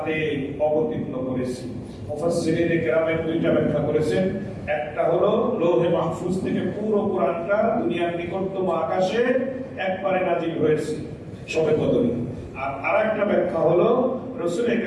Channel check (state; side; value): identical; both; correlation 1.00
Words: অবতীর্ণ করেছি। মুফাসসিরিন কেরামের দুইটা ব্যাখ্যা করেছেন। একটা হলো লৌহে মাহফুজ থেকে পুরো কোরআনটা দুনিয়ার নিকটতম আকাশে একবারে নাজিল হয়েছে শবে কদরে। আর আরেকটা ব্যাখ্যা হলো রাসূল